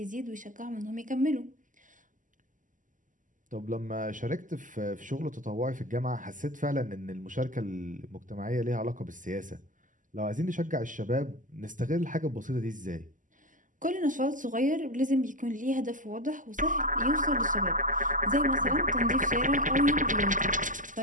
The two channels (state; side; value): late; left; 0.38 ms